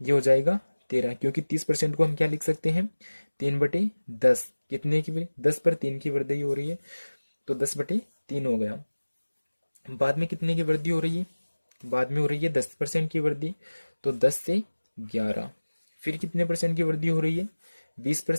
ये हो जाएगा 13, क्योंकि 30% को हम क्या लिख सकते हैं, 3/10। कितने की, 10 पर 3 की वृद्धि हो रही है तो 10/3 हो गया। बाद में कितने की वृद्धि हो रही है, बाद में हो रही है 10% की वृद्धि, तो 10 से 11। फिर कितने परसेंट की वृद्धि हो रही है,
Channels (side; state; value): both; inverted; correlation -1.00